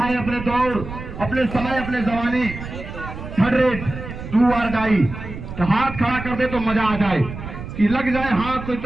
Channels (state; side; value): noise; right; rumble, 10 dB below the sound